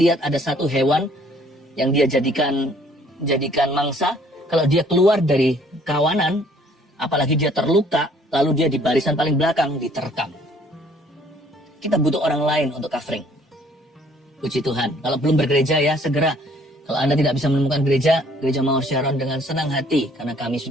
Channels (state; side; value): normal; both; correlation 0.60